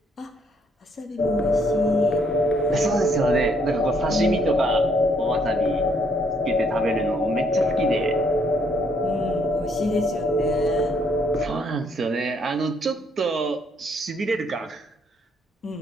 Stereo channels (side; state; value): both; normal; correlation 0.69